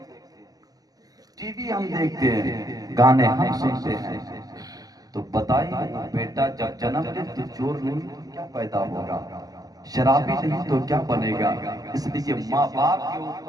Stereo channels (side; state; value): left; late; 0.18 ms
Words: ہیں، ٹی وی ہم دیکھتے ہیں، گانے ہم سنتے ہیں، تو بتائیے بیٹا جب جنم لے تو چور نہیں تو کیا پیدا ہوگا، شرابی نہیں تو کیا بنے گا؟ اس لیے ماں باپ کے